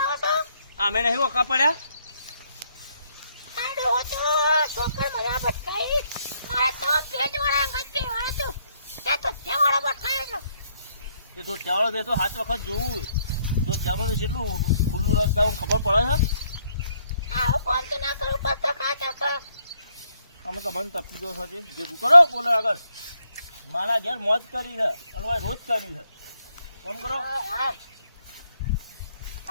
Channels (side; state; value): both; inverted; correlation -0.72